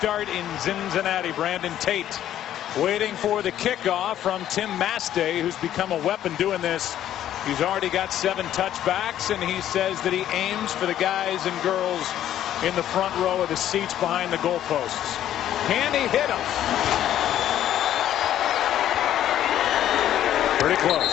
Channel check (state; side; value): quieter; right; 11.6 dB